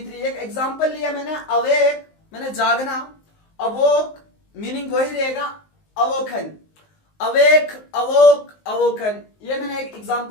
एक एग्जांपल लिया मैंने, अवेक मैंने जागना, अवोक मीनिंग वही रहेगा अवोखन, अवेक अवोक अवोकन, ये मैंने एक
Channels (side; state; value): right; late; 19 ms